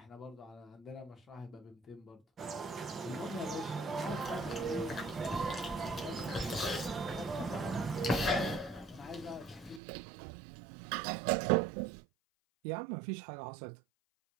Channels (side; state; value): left; drops out; at 9.8 s